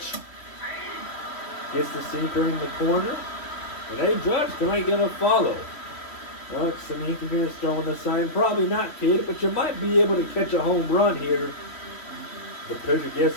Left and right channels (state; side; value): late; right; 3.1 ms